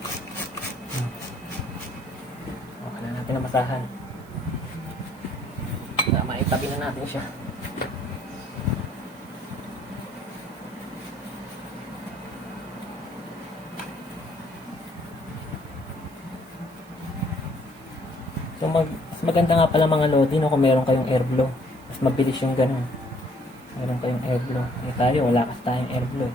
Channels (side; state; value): right; noise; hiss, 26 dB below the sound